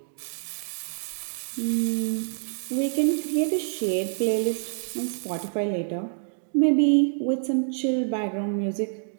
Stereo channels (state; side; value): silent; left; digital silence